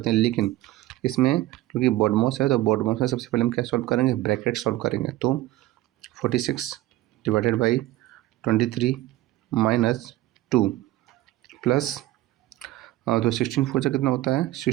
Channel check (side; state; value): left; quieter; 16.0 dB